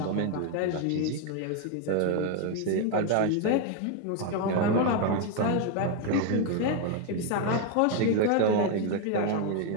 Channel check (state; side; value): different; both; correlation 0.01